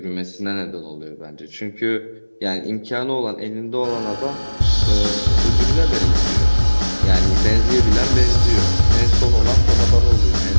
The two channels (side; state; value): both; inverted; correlation -1.00